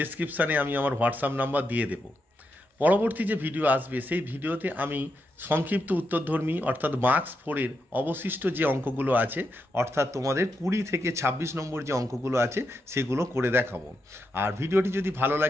আমি আমার হোয়াটসঅ্যাপ নাম্বার দিয়ে দেব। পরবর্তী যে ভিডিও আসবে সেই ভিডিওতে আমি সংক্ষিপ্ত উত্তরধর্মী অর্থাৎ মার্কস 4-এর অবশিষ্ট যে অঙ্কগুলো আছে অর্থাৎ তোমাদের 20 থেকে 26 নম্বর যে অঙ্কগুলো আছে সেগুলো করে দেখাবো। আর ভিডিওটি যদি ভালো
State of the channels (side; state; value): both; normal; correlation 0.84